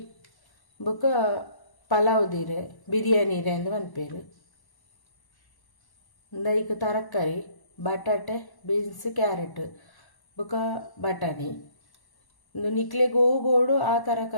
ಬೊಕ್ಕ ಪಲಾವ್ ದೀರೆ ಬಿರಿಯಾನಿ ರೇ ಅಂದ್ ಮನ್ಪೇರು ಐಕ್ ತರಕಾರಿ ಬಟಾಟೆ ಬೀನ್ಸ್ ಕ್ಯಾರೆಟ್ ಬೊಕ್ಕ ಬಟಾಣಿ ಒಂದು ನಿಕ್ಲೆ ಗೋಬೋಡು ಆ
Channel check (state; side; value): late; right; 1.1 ms